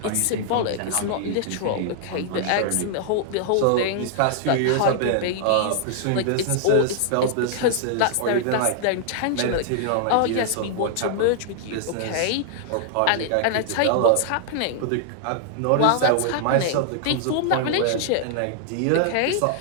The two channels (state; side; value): different; both; correlation -0.01